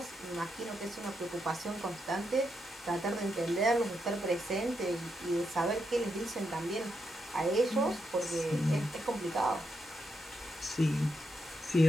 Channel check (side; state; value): both; normal; correlation 0.82